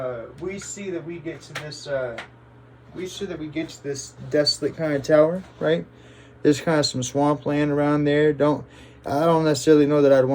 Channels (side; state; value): both; identical; correlation 1.00